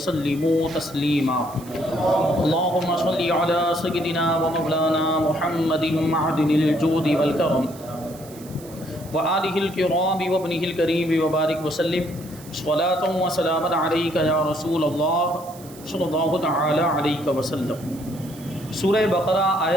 تسلیما اللہم صل علی سیدنا ومولانا محمد معدن الجود والکرم وآلہ الکرام وابنہ الکریم وبارک وسلم صلاۃ و سلاما علیک یا رسول اللہ صلی اللہ تعالی علیہ وسلم۔ سورہ بقرہ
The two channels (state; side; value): noise; right; hiss, 20 dB below the sound